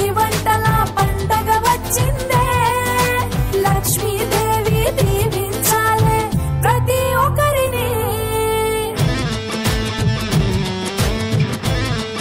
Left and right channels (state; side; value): identical; both; correlation 1.00